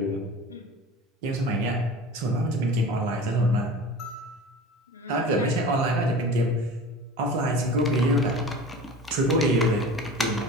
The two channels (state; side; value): normal; both; correlation 0.37